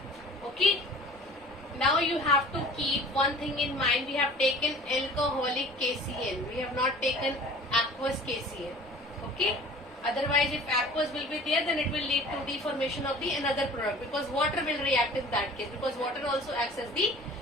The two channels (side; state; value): both; normal; correlation 0.45